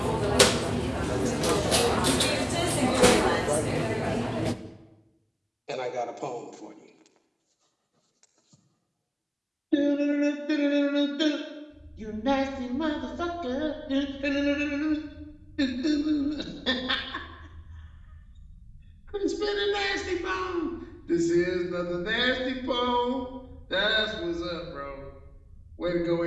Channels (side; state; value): both; identical; correlation 1.00